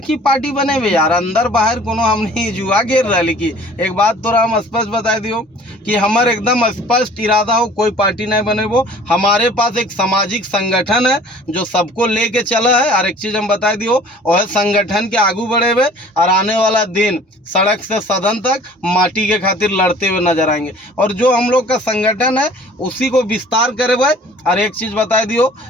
पार्टी बने हुए यार, अंदर बाहर कोनो हमने जुआ घेर रहा। लेकिन एक बात तो हम स्पष्ट बता दियो कि हमारे एकदम स्पष्ट इरादा हो, कोई पार्टी नहीं बने। वो हमारे पास एक सामाजिक संगठन है जो सबको लेके चला है। और एक चीज हम बता दियो, और संगठन के आगू बढ़े हुए और आने वाला दिन सड़क से सदन तक माटी के खातिर लड़ते हुए नजर आएंगे। और जो हम लोग का संगठन है उसी को विस्तार करे हुए। और एक चीज बता दियो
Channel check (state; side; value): normal; both; correlation 0.49